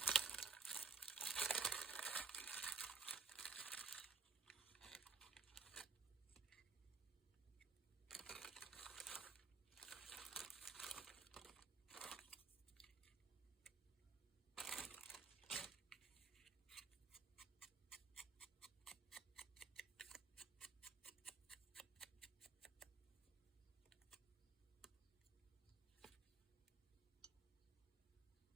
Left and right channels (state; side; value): quieter; left; 4.6 dB